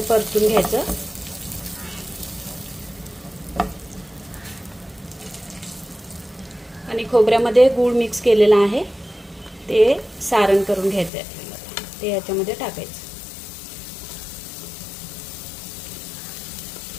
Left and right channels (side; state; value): right; drops out; at 11.1 s